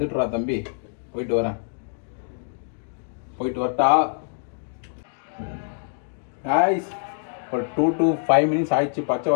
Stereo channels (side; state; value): right; silent; digital silence